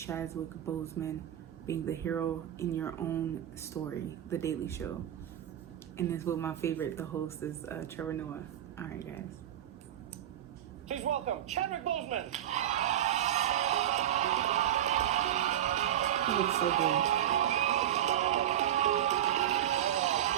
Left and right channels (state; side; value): quieter; left; 11.4 dB